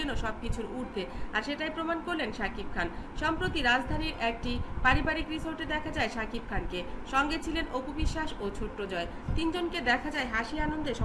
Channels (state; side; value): identical; both; correlation 1.00